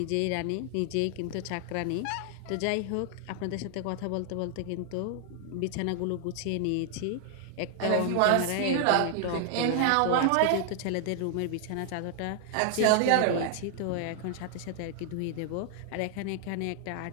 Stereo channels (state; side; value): different; both; correlation 0.00